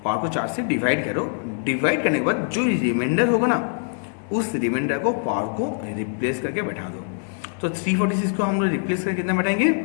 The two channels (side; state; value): right; silent; digital silence